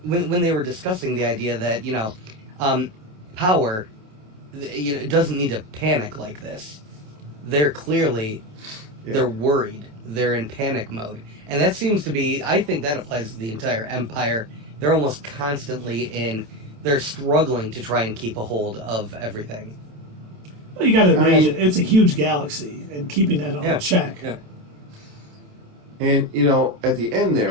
when they were discussing the idea that, power, it doesn't need to panic like this. They're clearly, they're worried. They're in panic mode. And that seems to be, I think that applies to the entire Empire. They're almost constantly they're struggling to try and keep a hold of everything. Well, you got to imagine, it's a huge galaxy, and keeping that all in check. Yeah. And, at the end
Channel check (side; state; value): left; late; 27 ms